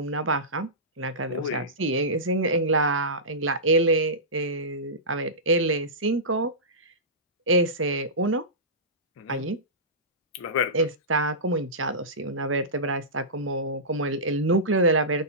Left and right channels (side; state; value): both; normal; correlation -0.19